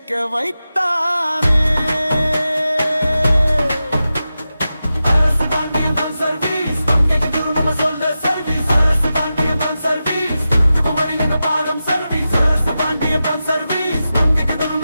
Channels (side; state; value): both; inverted; correlation -0.92